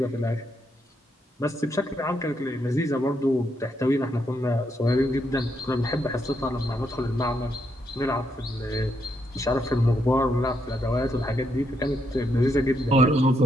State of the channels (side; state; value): both; normal; correlation 0.78